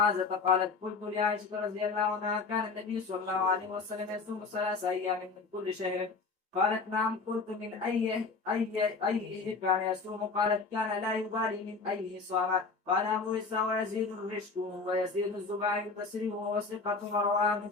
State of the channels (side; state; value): right; quieter; 4.4 dB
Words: قالت قلت لعائشة رضي الله عنها كان النبي صلى الله عليه وسلم يصوم 3 أيام من كل شهر؟ قالت نعم. قلت من أي كان يصوم؟ قالت كان لا يبالي من أيه صام. قال أبو إسحاق ويزيد الرشد ويزيد الزباعي البصري وهو ثقة ورواه من